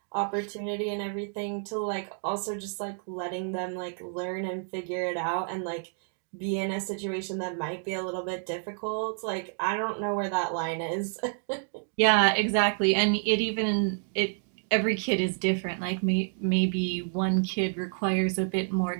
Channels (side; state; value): left; silent; 58 dB below the other